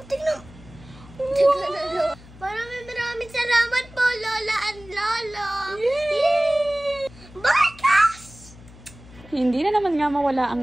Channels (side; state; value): left; noise; hum, 21 dB below the sound